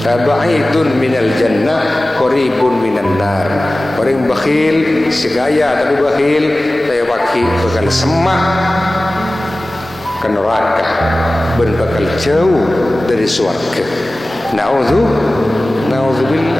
ba'idun minal jannah qaribun minan nar. Orang bakhil segaya tapi bakhil saya wakil bakal semak ke neraka dan bakal jauh dari surga.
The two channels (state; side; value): normal; both; correlation 0.97